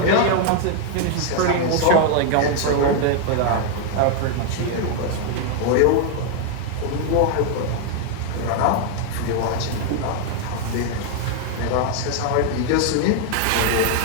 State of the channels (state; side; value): different; both; correlation 0.00